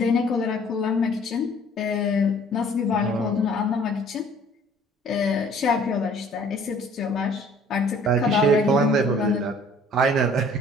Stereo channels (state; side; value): normal; both; correlation 0.54